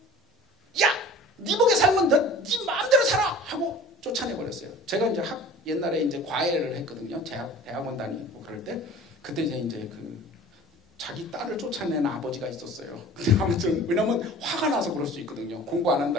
야, 네 복에 살면 네 마음대로 살아! 하고 쫓아내버렸어요. 제가 이제 옛날에 이제 과외를 했거든요. 대학원 다니고 그럴 때 그때 이제 자기 딸을 쫓아내는 아버지가 있었어요. 근데 아무튼 왜냐면 화가 나서 그럴 수 있거든요. 공부 안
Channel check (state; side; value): normal; both; correlation 0.43